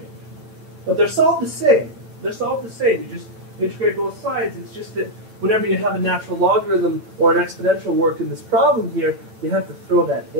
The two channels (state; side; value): late; left; 9.0 ms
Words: But they're solved the same. They're solved the same. You just integrate both sides. It's just that whenever you have a natural logarithm or an exponential work in this problem here, you have to throw that